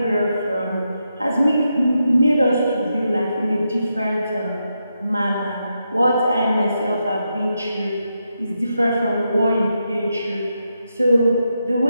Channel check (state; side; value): inverted; both; correlation -0.84